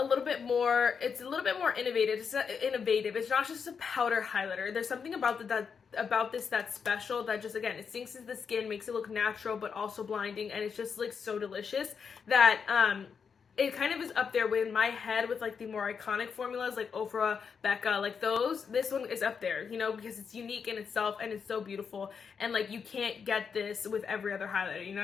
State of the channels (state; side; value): quieter; right; 6.2 dB